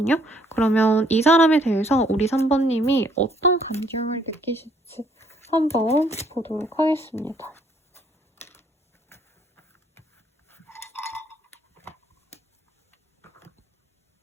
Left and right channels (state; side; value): normal; both; correlation 0.65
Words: 그러면 이 사람에 대해서 우리 3번님이 어떤 감정을 느끼실지 한번 보도록 하겠습니다.